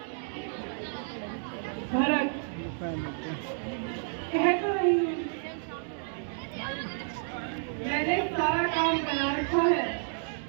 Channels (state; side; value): silent; left; 57 dB below the other